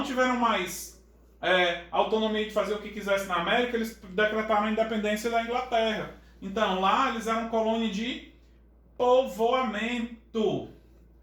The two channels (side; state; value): both; identical; correlation 1.00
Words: tiveram mais autonomia de fazer o que quisessem na América, eles decretaram a independência da Inglaterra. Então lá eles eram colônia de povoamento.